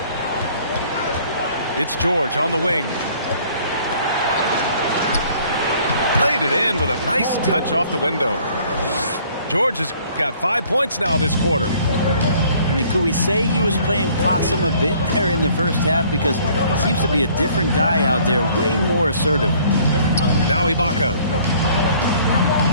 It's George on the wing. Laid it in with a nice touch off the window. George has got 5 points now this quarter. I mean, could we say he was playing possum a bit there in the first half? Because he seems to be a different guy out there, way more assertive. Now Ibaka.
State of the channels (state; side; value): inverted; both; correlation -0.57